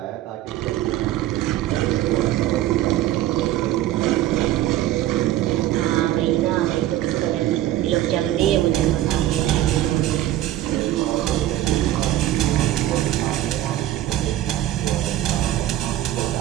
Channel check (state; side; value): quieter; left; 13.9 dB